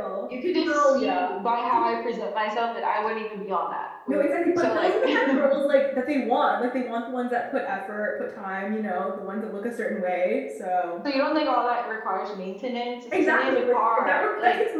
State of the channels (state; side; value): identical; both; correlation 1.00